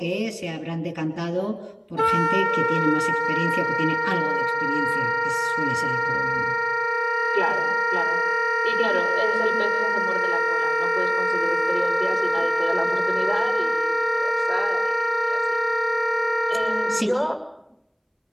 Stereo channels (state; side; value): identical; both; correlation 1.00